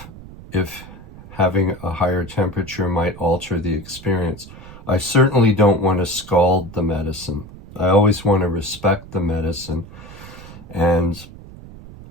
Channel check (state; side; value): noise; right; rumble, 17 dB below the sound